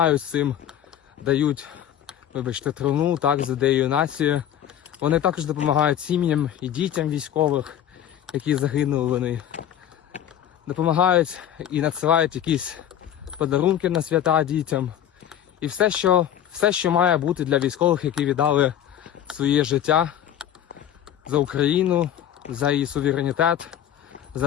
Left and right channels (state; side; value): quieter; right; 10.6 dB